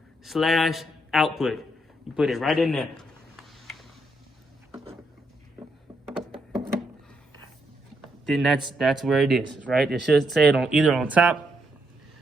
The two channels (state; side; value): normal; both; correlation 0.78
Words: You put it right in there. Then that's where it is, right? It should say it on either on top.